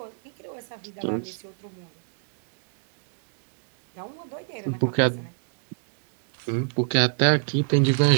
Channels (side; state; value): left; silent; 60 dB below the other